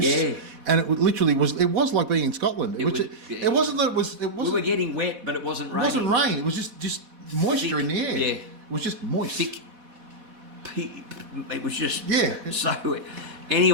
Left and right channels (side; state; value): left; late; 4.1 ms